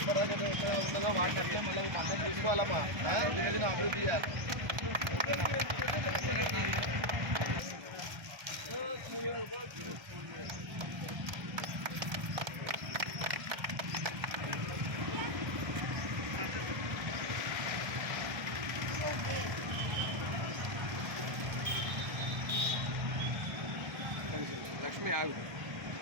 కష్టపడ్డాం ఉన్నదో వాటిని అట్లే మళ్ళీ అందరం తీసుకోవాలమ్మా దినదిన అభివృద్ధి చేయాలి లక్ష్మి ఆగు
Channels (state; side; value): late; left; 1.3 ms